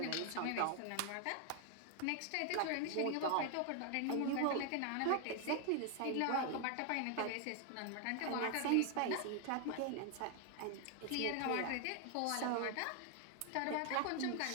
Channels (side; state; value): both; different; correlation 0.00